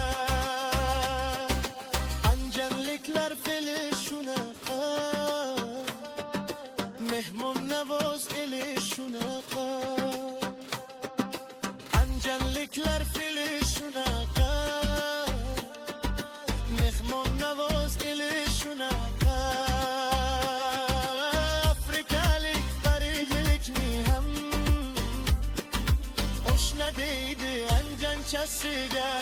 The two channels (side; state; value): both; identical; correlation 1.00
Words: Anjanliklar fe'li shunaqa, mehmon navoz eli shunaqa. Anjanliklar fe'li shunaqa, mehmon navoz eli shunaqa. Afrikalik parijlikni ham oshna deydi anjanchasiga.